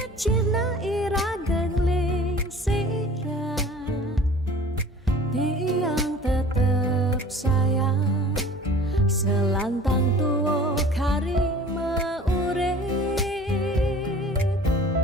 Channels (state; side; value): normal; both; correlation 0.45